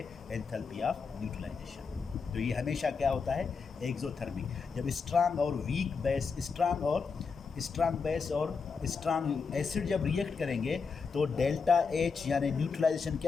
enthalpy of neutralisation. तो ये हमेशा क्या होता है, एक्सोथर्मिक। जब स्ट्रांग और वीक बेस, स्ट्रांग बेस और स्ट्रांग एसिड जब रिएक्ट करेंगे तो डेल्टा H यानी न्यूट्रलाइजेशन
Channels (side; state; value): right; quieter; 5.2 dB